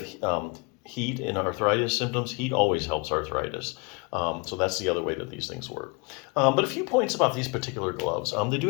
heat in arthritis symptoms, heat always helps arthritis. So that's the other way that these things work. But a few points about these particular gloves. They do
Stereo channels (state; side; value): quieter; right; 29.7 dB